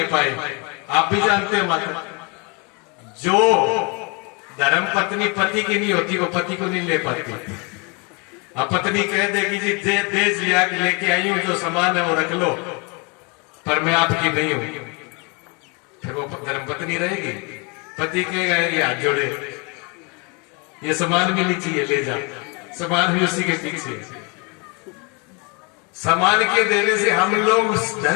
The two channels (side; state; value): right; quieter; 31.4 dB